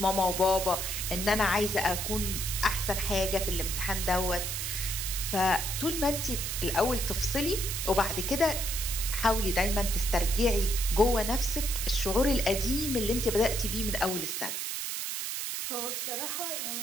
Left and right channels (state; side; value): noise; right; hiss, 3 dB below the sound